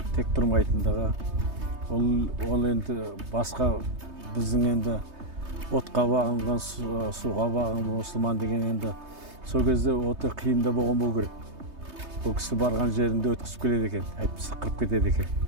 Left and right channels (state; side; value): late; left; 3.2 ms